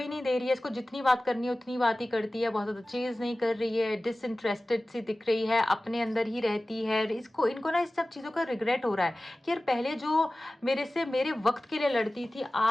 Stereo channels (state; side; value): normal; both; correlation 0.97